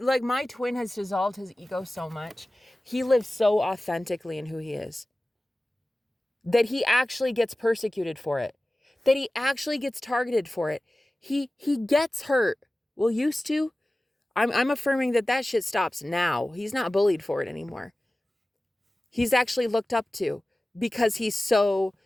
my twin has dissolved his ego so much. He lives so authentically in who he is that he actually gets persecuted for it, that he actually gets targeted for it. He gets hurt. Well, used to. I'm affirming that shit stops now. He's not bullied for it anymore. He's actually looked up to because he's so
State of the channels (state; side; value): normal; both; correlation 0.97